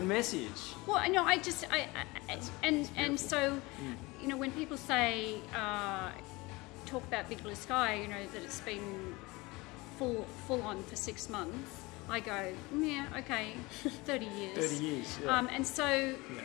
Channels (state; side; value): quieter; right; 23.1 dB